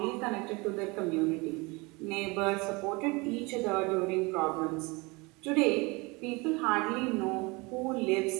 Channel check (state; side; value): quieter; left; 26.0 dB